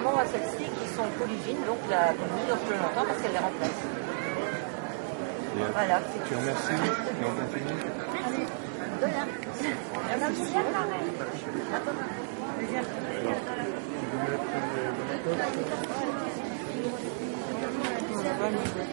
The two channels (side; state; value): left; silent; digital silence